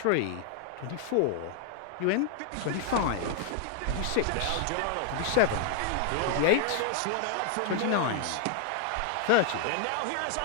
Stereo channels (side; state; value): both; different; correlation 0.00